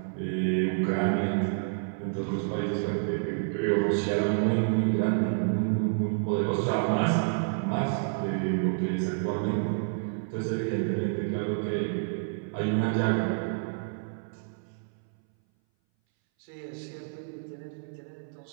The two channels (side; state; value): left; silent; 59 dB below the other